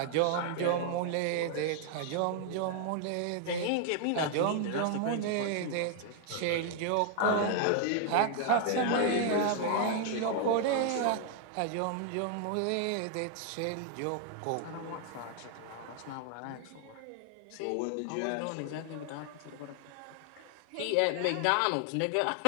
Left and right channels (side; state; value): both; different; correlation 0.00